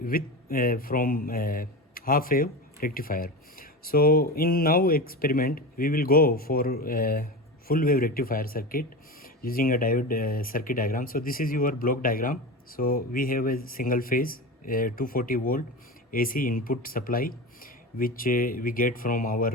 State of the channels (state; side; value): normal; both; correlation 0.25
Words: from half wave rectifier. So in now experiment we will go for full wave rectifier circuit using a diode circuit diagram. So this is your block diagram. So we have a single phase 240 volt AC input supply which we get from our